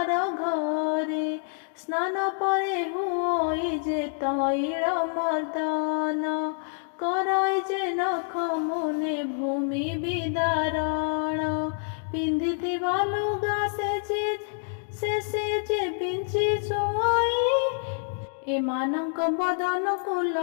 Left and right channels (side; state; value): right; silent; digital silence